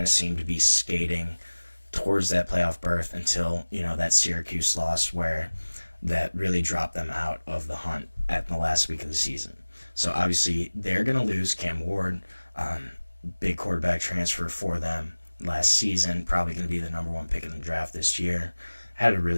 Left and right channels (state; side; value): inverted; both; correlation -1.00